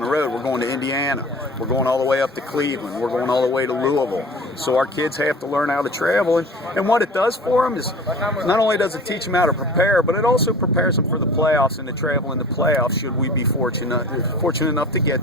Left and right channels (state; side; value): normal; both; correlation 0.40